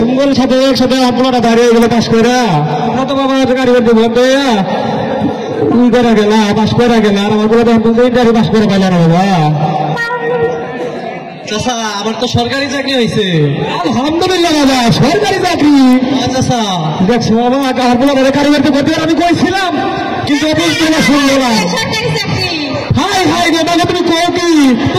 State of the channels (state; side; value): identical; both; correlation 1.00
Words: সাথে একসাথে আপনারা দাঁড়িয়ে গেলে পাশ করে তো বাবা গাড়ি করতে বন্ধ তুই করে গেলা পাশ করে গেলা আর আমার গাড়ি পাশ করে পাইলা না বাবা। চাচা আমার তো সরকারি চাকরি হয়েছে। আলহামদুলিল্লাহ বাবা সরকারি চাকরি। চাচা দেখছো বাবা আপনারা গাড়ি করতে করতে আমি কইছিলাম কিন্তু অবশ্যই শুনলো না। হাই হাই গো বাবা তুমি কও কি